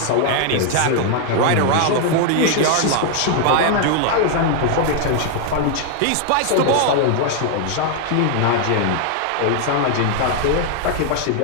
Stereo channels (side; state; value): both; different; correlation 0.00